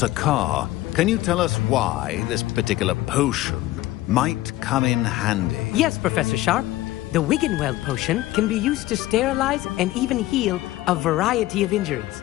can you tell us why this particular potion might come in handy? Yes, Professor Sharp. The Wiggenweld potion can be used to sterilize and even heal a variety of injuries.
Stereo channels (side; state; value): right; quieter; 16.6 dB